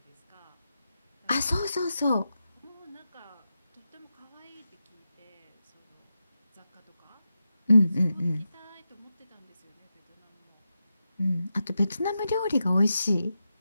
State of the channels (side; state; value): both; inverted; correlation -0.89